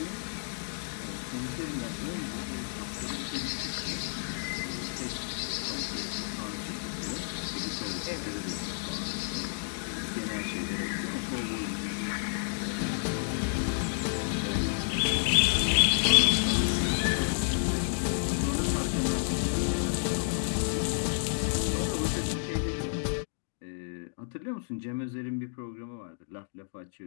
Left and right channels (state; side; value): silent; right; digital silence